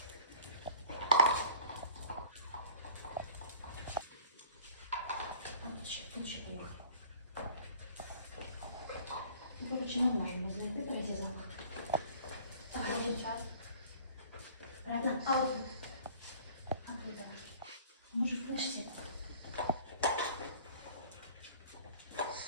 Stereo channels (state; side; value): inverted; both; correlation -0.49